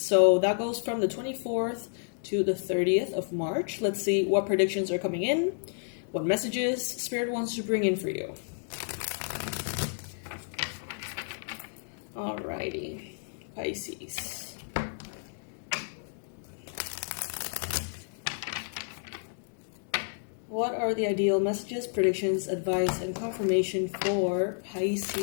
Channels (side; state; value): right; silent; digital silence